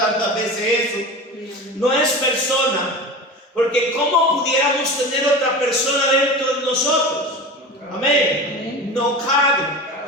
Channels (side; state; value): both; normal; correlation 0.30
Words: veces eso, no es persona, porque ¿cómo pudiéramos tener otra persona dentro